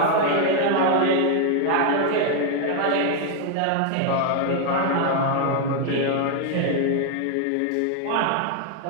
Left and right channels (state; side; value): different; both; correlation 0.00